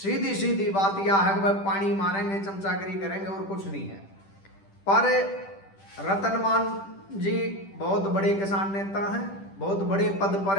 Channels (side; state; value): right; late; 10 ms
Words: सीधी बात यह है कि भाई पानी मारेंगे, चमचागिरी करेंगे और कुछ नहीं है। पर रतन मान जी बहुत बड़े किसान नेता हैं, बहुत बड़े पद पर